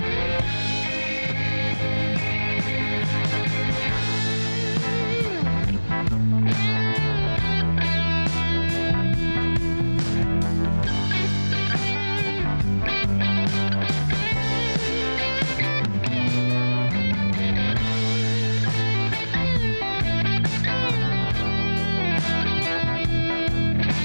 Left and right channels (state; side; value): inverted; both; correlation -1.00